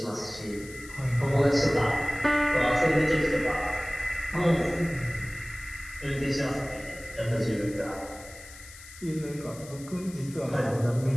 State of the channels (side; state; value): left; noise; hiss, 18 dB below the sound